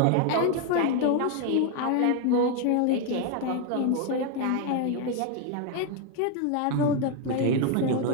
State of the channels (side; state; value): both; different; correlation 0.01